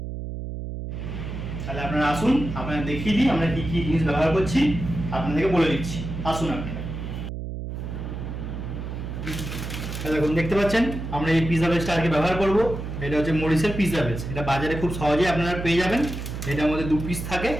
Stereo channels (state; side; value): noise; right; hum, 6 dB below the sound